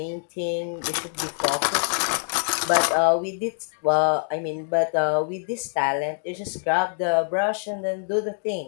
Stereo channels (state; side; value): silent; right; 59 dB below the other